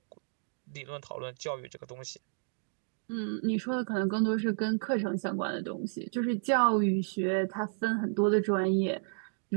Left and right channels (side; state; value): left; silent; digital silence